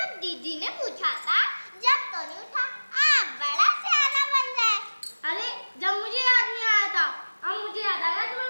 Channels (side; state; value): both; inverted; correlation -1.00